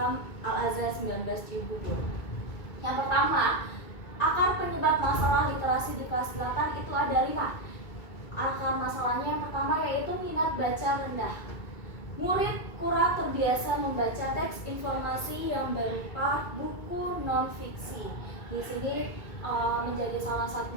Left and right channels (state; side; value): late; right; 2.2 ms